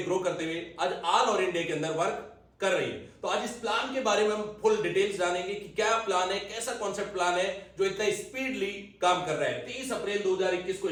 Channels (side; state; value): both; identical; correlation 1.00